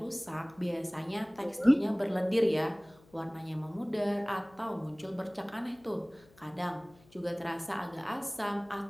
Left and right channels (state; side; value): noise; left; hum, 27 dB below the sound